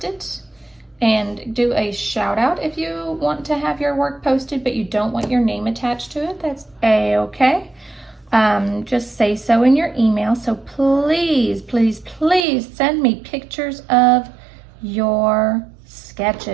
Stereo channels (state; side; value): drops out; left; at 12.5 s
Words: it and do a shout out. If you want to have your work posted but you don't want your name attached to it, that's a-okay. Just say so in your email. So please, please, please send me pictures of your